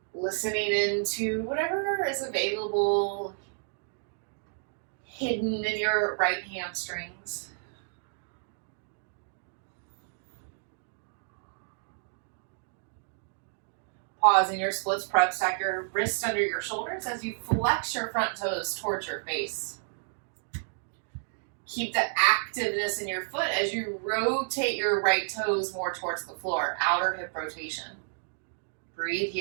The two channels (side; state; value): left; silent; digital silence